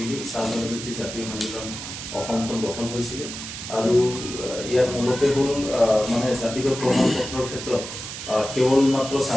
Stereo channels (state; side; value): noise; right; hiss, 9 dB below the sound